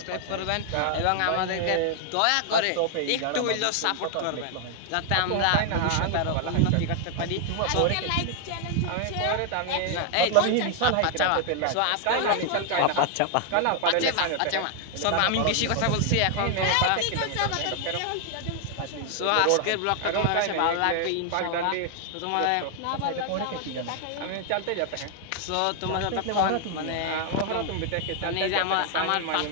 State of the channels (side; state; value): both; different; correlation 0.00